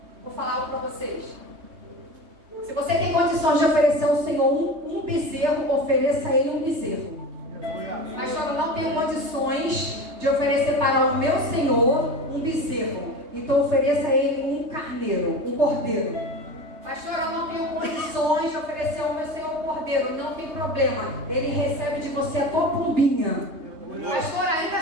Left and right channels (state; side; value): late; left; 3.2 ms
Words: Vou falar algo para vocês. Se você tem condições de oferecer ao Senhor um bezerro, ofereça a Ele um bezerro. Pastor, eu não tenho condições de oferecer para o meu Senhor um bezerro. Então ofereça a Ele um carneiro, um cordeiro. Pastor, eu não tenho condições de oferecer ao meu Senhor um cordeiro. Não tem problema. Ele recebe de você a tua pombinha. Pastor, ainda